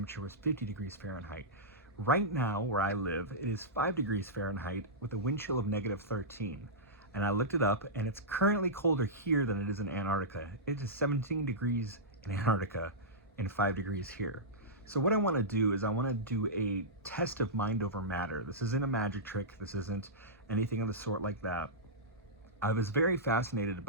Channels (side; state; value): both; normal; correlation -0.14